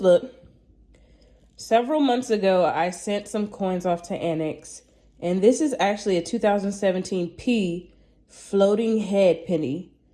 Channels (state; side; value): identical; both; correlation 1.00